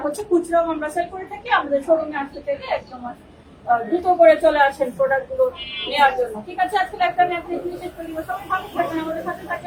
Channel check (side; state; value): both; identical; correlation 1.00